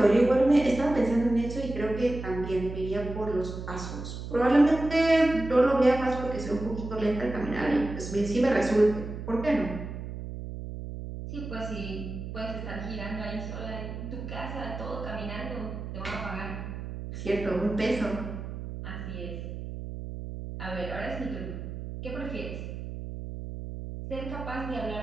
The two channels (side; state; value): right; noise; hum, 8 dB below the sound